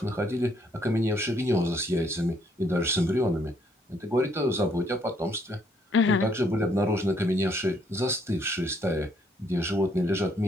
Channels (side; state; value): both; normal; correlation 0.69